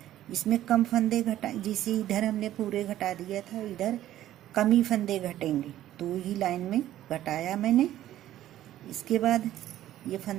इसमें कम फंदे घटा, जिसे इधर हमने पूरे घटा दिया था इधर कम ही फंदे घटेंगे। 2 ही लाइन में घटाया मैंने। इसके बाद ये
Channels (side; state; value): left; quieter; 13.1 dB